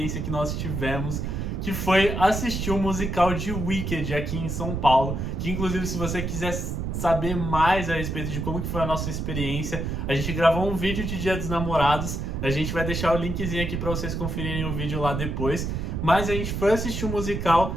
que nós tivemos, que foi assistir o musical de Wicked aqui em São Paulo, que inclusive se você quiser saber mais a respeito de como que foi a nossa experiência, a gente gravou um vídeo de Dia dos Namorados, a gente vai deixar o linkzinho aqui para vocês conferirem o vídeo lá depois, mas a gente foi assistir o musical,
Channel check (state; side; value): noise; right; rumble, 3 dB below the sound